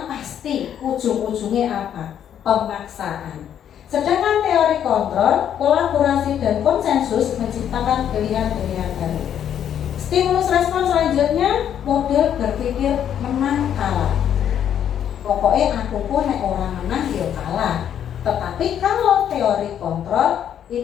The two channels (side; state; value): right; quieter; 9.6 dB